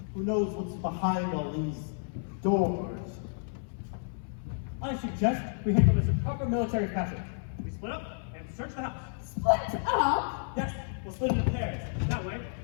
Who knows what's behind all these doors? I suggest we handle this in proper military fashion. We split up and search the house. Split up? Yes, we'll split into pairs. That way,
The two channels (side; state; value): right; silent; 56 dB below the other